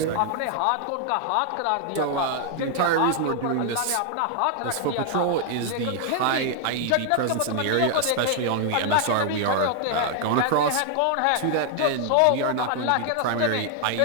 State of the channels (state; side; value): different; both; correlation 0.00